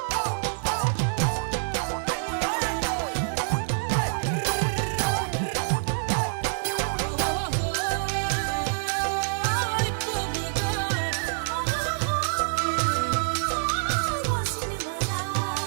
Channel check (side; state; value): left; silent; digital silence